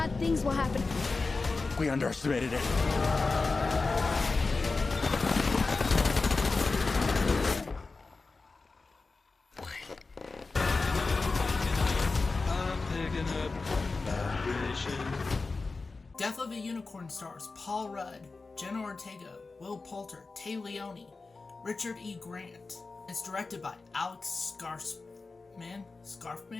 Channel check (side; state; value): right; quieter; 3.9 dB